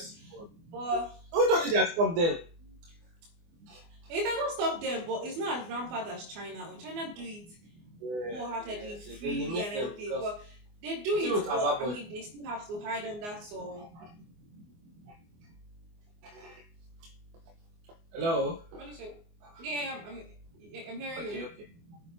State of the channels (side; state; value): left; late; 24 ms